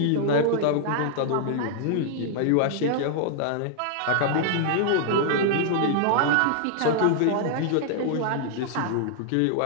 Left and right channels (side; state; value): both; different; correlation -0.01